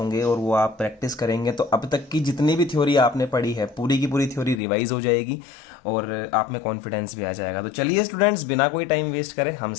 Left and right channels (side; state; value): right; drops out; at 4.6 s